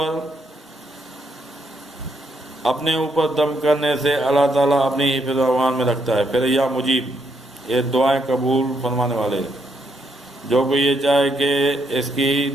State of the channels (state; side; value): normal; both; correlation 0.76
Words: اپنے اوپر دم کرنے سے اللہ تعالیٰ اپنی حفظ و امان میں رکھتا ہے۔ پھر یا مجیب، یہ دعائیں قبول فرمانے والے، جو کوئی یہ چاہے کہ اس کی